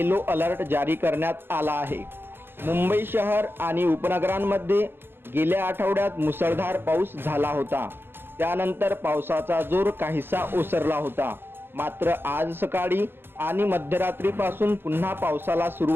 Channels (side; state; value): left; late; 0.10 ms